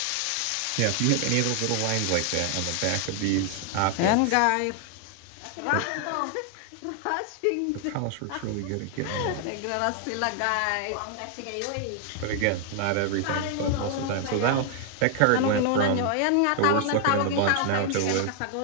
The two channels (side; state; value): both; different; correlation 0.00